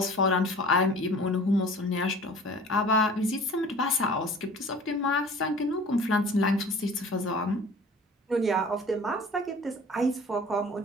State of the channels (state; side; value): normal; both; correlation 0.45